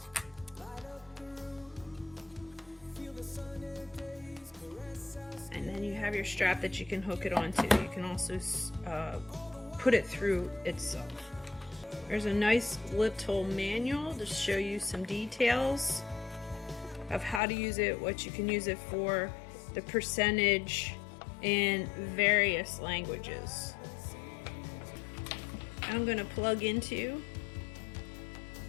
And then you have your strap that you can hook it onto. You can also put it through itself. There's a nice little manual to show you some details of how to use it, what you can use it for, the percentage, in various languages. I'm going to plug into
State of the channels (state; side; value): drops out; right; at 17.4 s